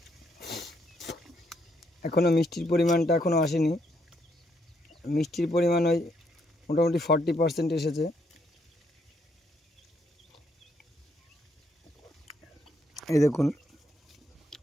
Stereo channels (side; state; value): both; normal; correlation 0.74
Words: এখনো মিষ্টির পরিমাণটা এখনো আসেনি। মিষ্টির পরিমাণ ওই মোটামুটি 40% এসেছে। এই দেখুন